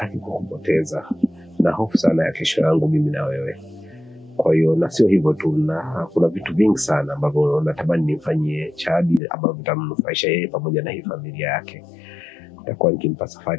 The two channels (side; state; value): right; drops out; at 9.2 s